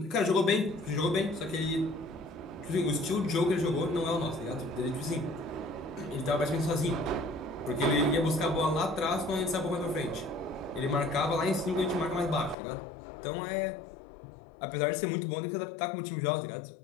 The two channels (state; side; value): drops out; right; at 12.6 s